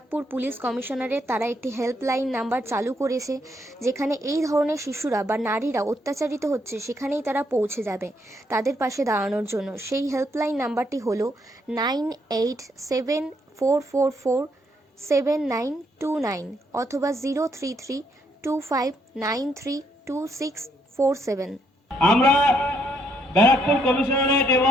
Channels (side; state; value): both; normal; correlation 0.73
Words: পুলিশ কমিশনারের। তারা একটি হেল্পলাইন নাম্বার চালু করেছে, যেখানে এই ধরনের শিশুরা বা নারীরা অত্যাচারিত হচ্ছে সেখানেই তারা পৌঁছে যাবে তাদের পাশে দাঁড়ানোর জন্য। সেই হেল্পলাইন নাম্বারটি হলো 9874447929 অথবা 03325932647। আমরা ব্যারাকপুর কমিশনারেট